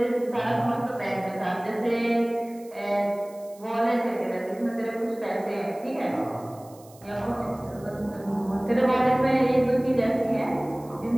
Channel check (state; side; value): noise; right; hiss, 25 dB below the sound